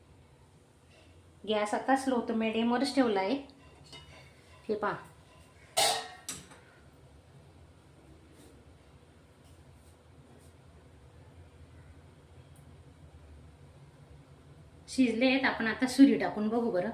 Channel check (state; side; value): identical; both; correlation 1.00